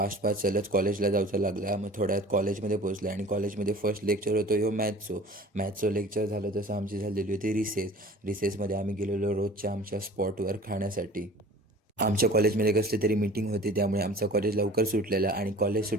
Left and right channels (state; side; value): normal; both; correlation 0.44